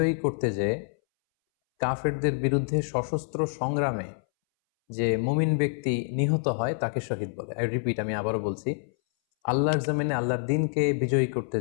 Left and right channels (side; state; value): right; silent; 60 dB below the other